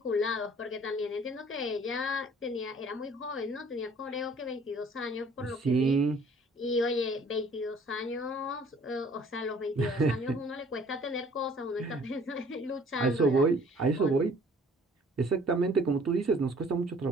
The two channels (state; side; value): normal; both; correlation 0.55